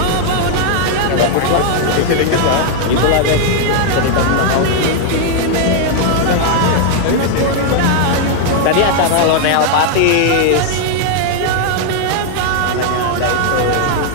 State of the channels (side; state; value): both; different; correlation 0.00